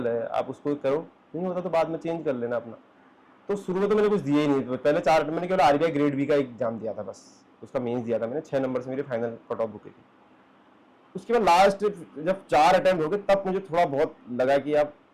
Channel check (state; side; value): identical; both; correlation 1.00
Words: है आप उसको करो, नहीं होता तो बाद में चेंज कर लेना अपना। तो शुरू में तो मैंने कुछ दिया ही नहीं। पहले 4 अटेम्प्ट मैंने केवल आरबीआई ग्रेड बी का एग्जाम दिया था बस। उसका मेंस दिया था मैंने, 6 नंबर से मेरी फाइनल कट ऑफ रुकी थी। उसके बाद लास्ट जब 4 अटेम्प्ट हो गए, तब मुझे थोड़ा बहुत लगा कि आप